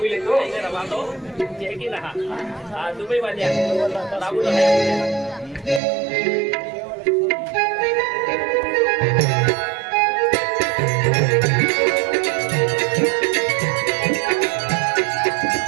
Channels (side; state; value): left; drops out; at 5.8 s